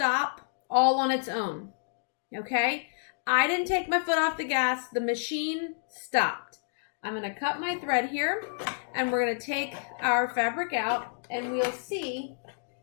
all on its own, okay? I didn't take my foot off the gas. The machine stopped. I'm going to cut my thread here, and we're going to take our fabric out, and we'll see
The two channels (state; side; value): silent; right; digital silence